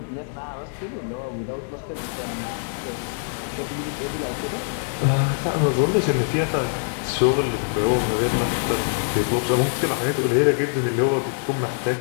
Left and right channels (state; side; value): silent; right; digital silence